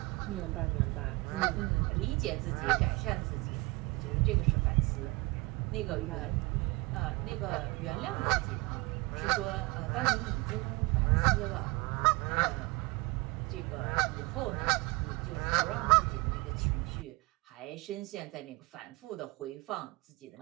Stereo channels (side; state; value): left; quieter; 24.6 dB